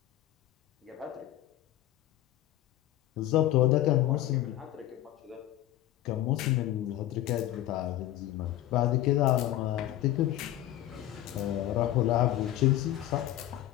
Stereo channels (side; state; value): right; quieter; 13.9 dB